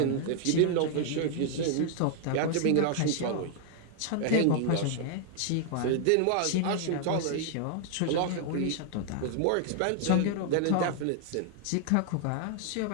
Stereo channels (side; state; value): both; different; correlation 0.00